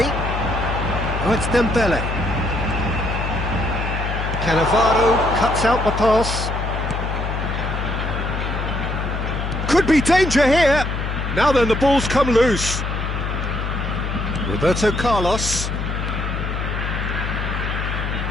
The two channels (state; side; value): noise; left; hum, 3 dB below the sound